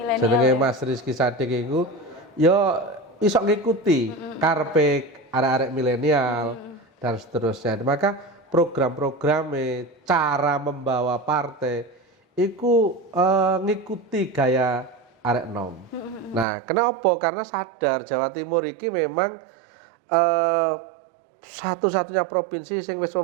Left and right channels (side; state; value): left; drops out; at 16.4 s